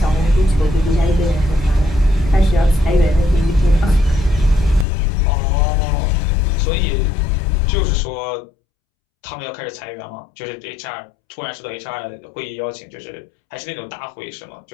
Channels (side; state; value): right; drops out; at 4.9 s